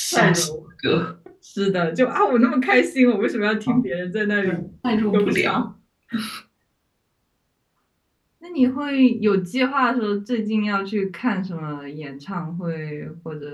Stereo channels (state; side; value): identical; both; correlation 1.00